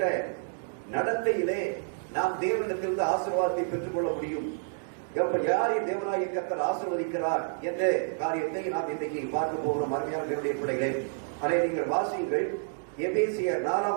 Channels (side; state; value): left; silent; digital silence